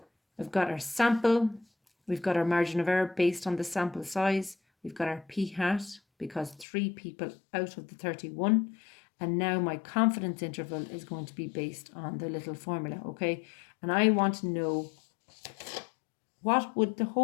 we've got our sample. We've got our margin of error based on the sample size. We've got our p hat because 3 people out of the 31. And now my confidence interval is going to be based on the little formula, okay? And I want to know, what would the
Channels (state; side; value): drops out; right; at 6.7 s